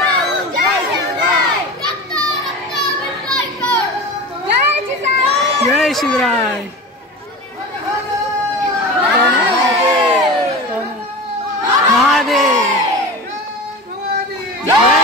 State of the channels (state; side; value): normal; both; correlation 0.30